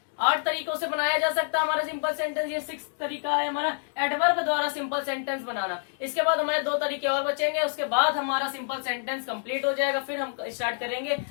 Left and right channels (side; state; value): right; silent; digital silence